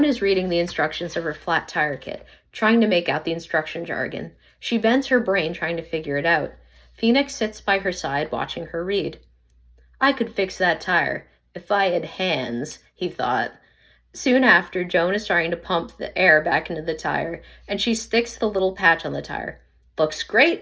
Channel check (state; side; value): identical; both; correlation 1.00